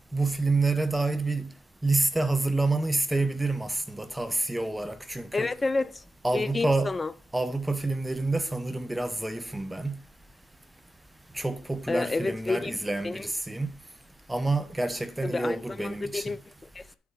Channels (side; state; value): both; normal; correlation 0.93